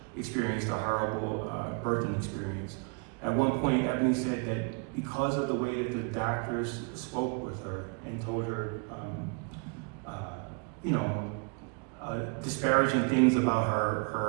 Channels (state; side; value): quieter; left; 33.8 dB